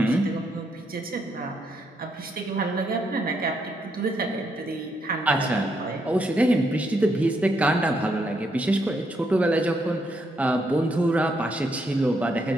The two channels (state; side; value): normal; both; correlation 0.77